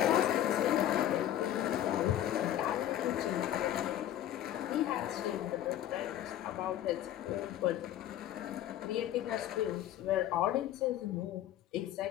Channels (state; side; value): quieter; right; 12.1 dB